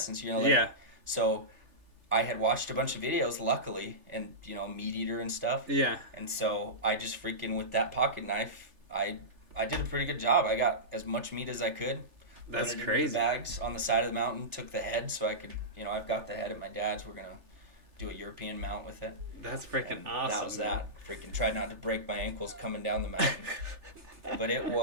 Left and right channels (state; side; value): late; left; 3.4 ms